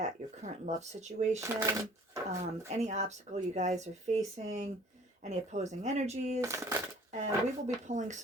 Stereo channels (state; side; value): normal; both; correlation 0.52